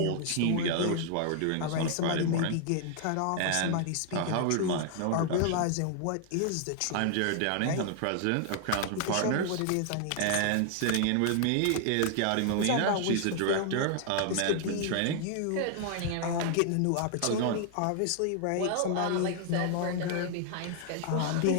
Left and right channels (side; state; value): both; different; correlation 0.00